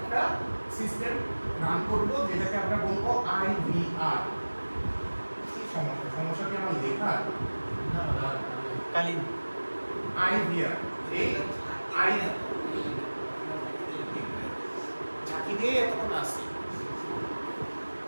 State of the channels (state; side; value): inverted; both; correlation -1.00